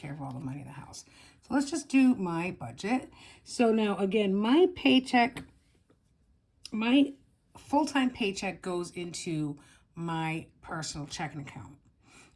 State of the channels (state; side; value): identical; both; correlation 1.00